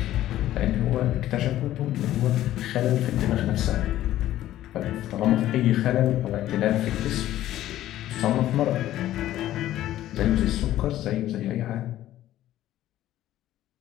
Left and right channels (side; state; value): right; quieter; 13.6 dB